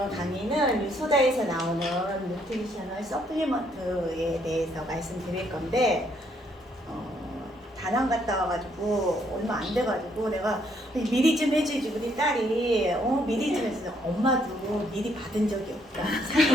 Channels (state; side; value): normal; both; correlation 0.70